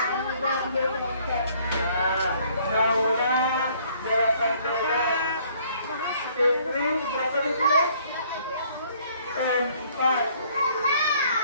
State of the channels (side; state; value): both; inverted; correlation -0.61